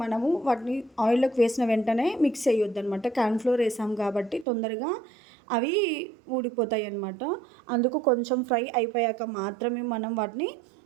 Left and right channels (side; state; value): left; drops out; at 4.5 s